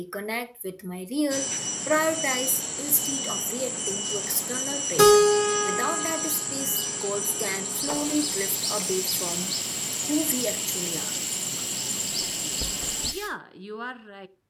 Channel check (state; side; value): identical; both; correlation 1.00